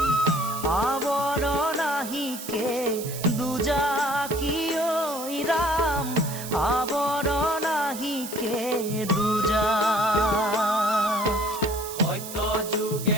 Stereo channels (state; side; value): noise; right; hiss, 10 dB below the sound